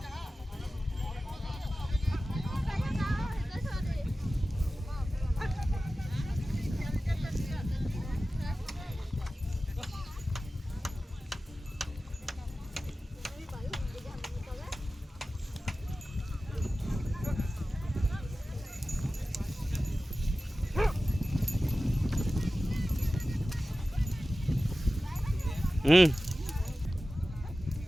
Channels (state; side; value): normal; both; correlation 0.95